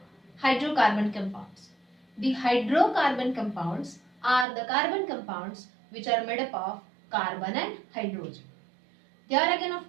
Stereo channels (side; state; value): left; drops out; at 4.5 s